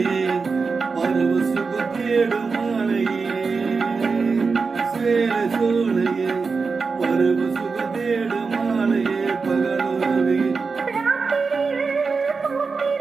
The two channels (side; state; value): left; quieter; 4.7 dB